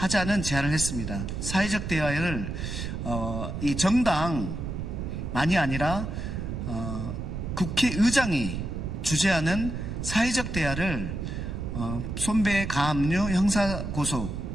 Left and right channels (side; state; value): right; noise; rumble, 5 dB below the sound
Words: 제안을 했습니다. 사회적 대화를 이 정당만이 아니라 국회의장이 주재하는 사회적 대화를 손배 가압류 형사고소